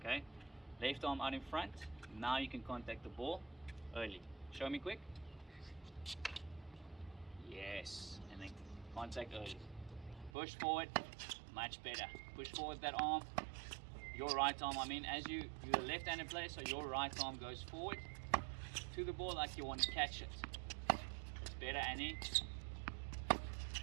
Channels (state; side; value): drops out; left; at 10.3 s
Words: Left arm out in front. Now you can contact the ball early. Show me quick. Yes. And then contact early. Push forward. Much better. Push forward that arm. Your right arm, you're a left-handed player, so your right arm goes forward to the ball like you want to catch it. That's better, Annie.